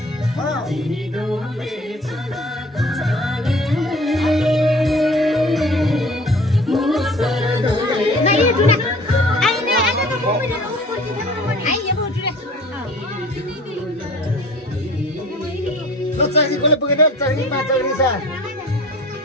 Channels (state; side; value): normal; both; correlation 0.47